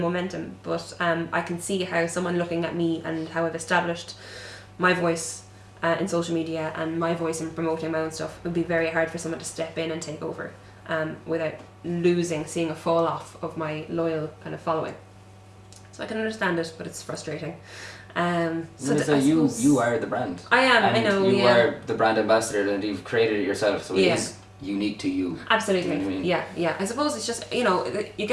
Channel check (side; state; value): both; identical; correlation 1.00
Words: momentum, but I can see how someone looking at me and how I've established my voice in social media and my voice in promoting my own stuff, it would be very hard for someone to step in and take over without seeing a fall off of my loyal kind of following. So I can understand it, but it's frustrating. So So you are the brand. I am. And I know. you Yeah. are the brand ambassador, and you've created it yourself, so it Yeah. is unique to you. Absolutely. You know what I mean? Yeah. I suppose it's just you